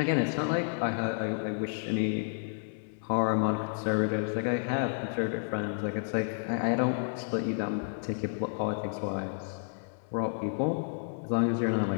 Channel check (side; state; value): right; silent; 57 dB below the other